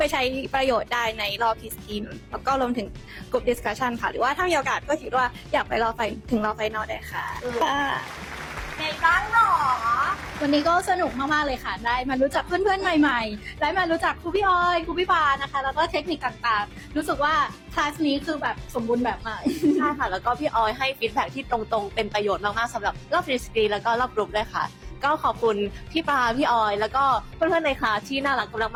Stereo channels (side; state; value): both; identical; correlation 1.00